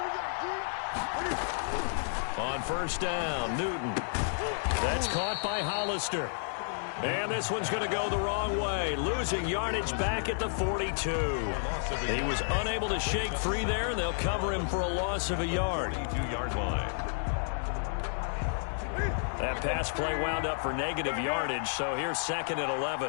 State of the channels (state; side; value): silent; right; digital silence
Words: On first down, Newton. That's caught by Hollister. And this one's going to go the wrong way, losing yardage back at the 42. He was unable to shake free there, and they'll cover him for a loss of a yard. 42-yard line. That pass play wound up for negative yardage, so here's second and